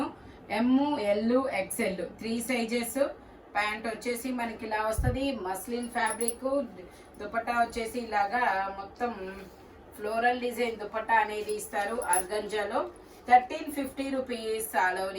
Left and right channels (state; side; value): identical; both; correlation 1.00